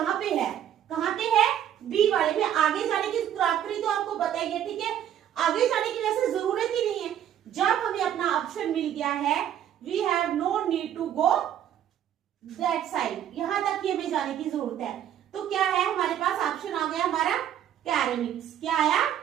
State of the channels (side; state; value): left; quieter; 10.4 dB